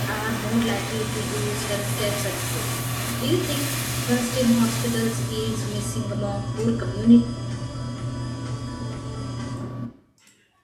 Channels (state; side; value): identical; both; correlation 1.00